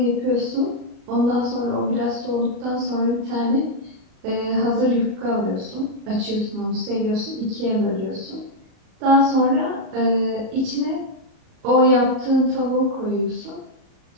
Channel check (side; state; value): left; late; 37 ms